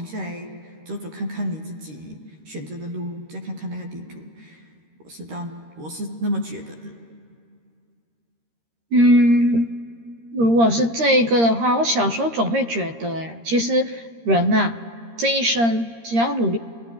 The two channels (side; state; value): left; late; 13 ms